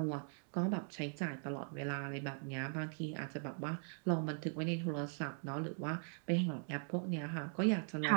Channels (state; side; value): silent; left; 51 dB below the other